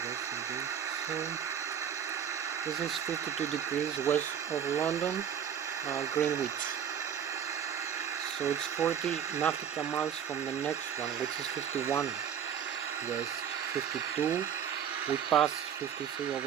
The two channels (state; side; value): quieter; left; 8.5 dB